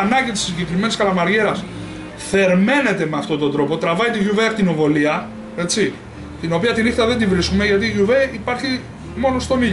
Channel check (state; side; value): identical; both; correlation 1.00